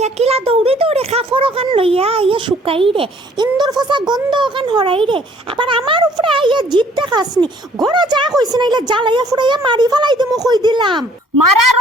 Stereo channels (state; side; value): normal; both; correlation 0.58